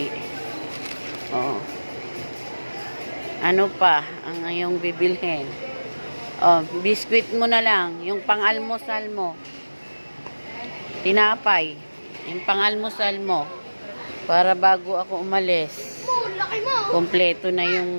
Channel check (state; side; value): inverted; both; correlation -1.00